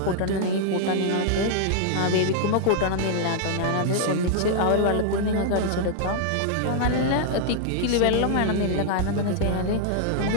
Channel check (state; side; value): different; both; correlation -0.01